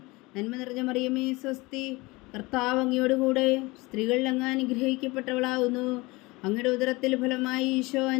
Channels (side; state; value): right; quieter; 23.1 dB